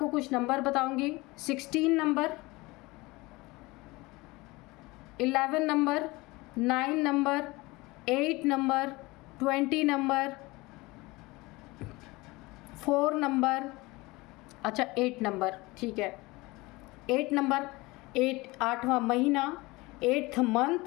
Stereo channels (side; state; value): right; quieter; 22.4 dB